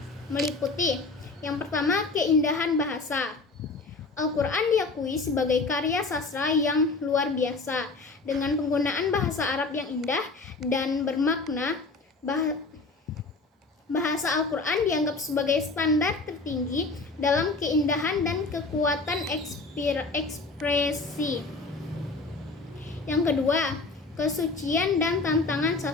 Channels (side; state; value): right; quieter; 3.7 dB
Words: meliputi: yang pertama, keindahan bahasa. Al-Quran diakui sebagai karya sastra yang luar biasa dengan penggunaan bahasa Arab yang indah dan bermakna. Bahasa Al-Quran dianggap sebagai standar tertinggi dalam keindahan dan kekuatan ekspresi. Yang kedua, kesucian dan tantangan